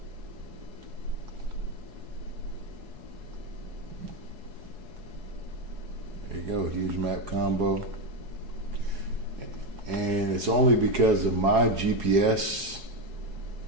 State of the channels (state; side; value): late; left; 4.7 ms